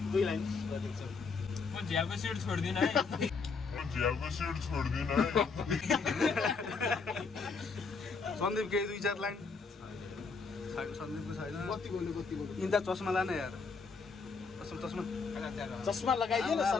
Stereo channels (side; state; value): right; quieter; 4.8 dB